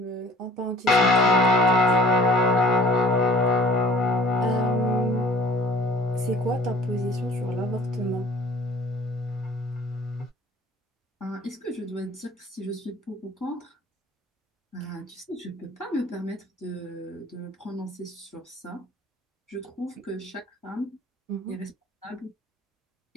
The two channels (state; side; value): normal; both; correlation 0.49